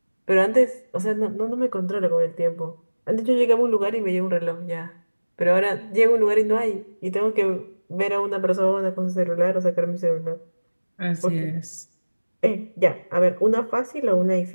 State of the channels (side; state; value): both; inverted; correlation -1.00